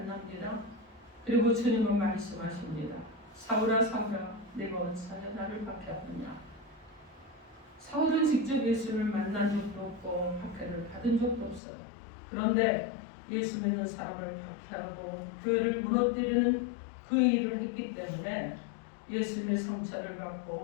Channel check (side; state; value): right; drops out; at 11.6 s